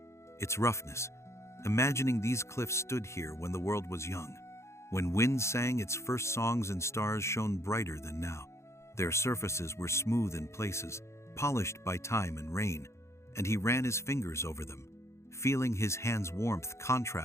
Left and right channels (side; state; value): right; late; 0.13 ms